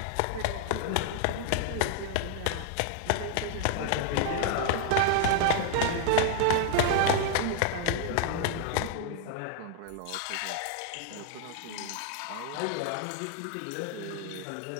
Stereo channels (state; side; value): different; both; correlation 0.00